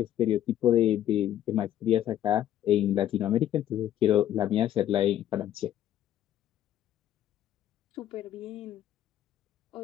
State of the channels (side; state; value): right; quieter; 11.7 dB